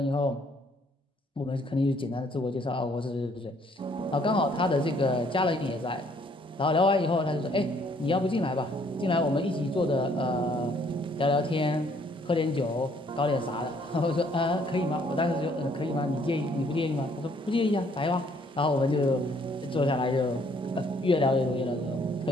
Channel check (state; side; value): normal; both; correlation 0.64